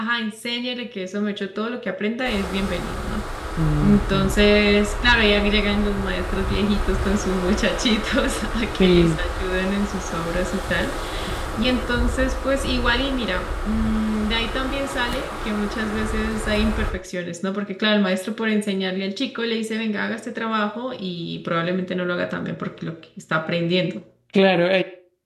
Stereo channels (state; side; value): identical; both; correlation 1.00